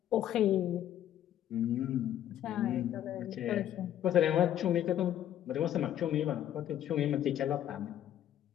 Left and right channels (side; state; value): right; quieter; 11.3 dB